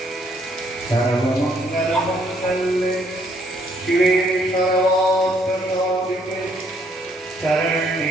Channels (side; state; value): both; normal; correlation 0.68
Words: सर्वमङ्गलमङ्गल्ये शिवे सर्वार्थसाधिके